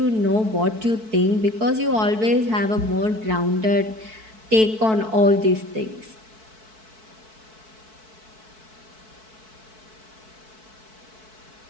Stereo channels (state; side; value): late; left; 4.6 ms